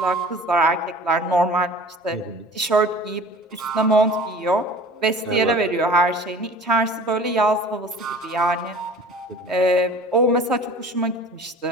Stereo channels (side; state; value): both; normal; correlation 0.43